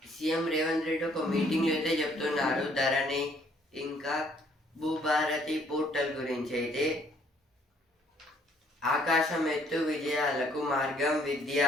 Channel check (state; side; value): normal; both; correlation 0.64